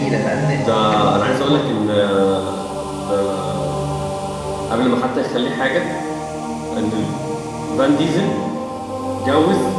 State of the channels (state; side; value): identical; both; correlation 1.00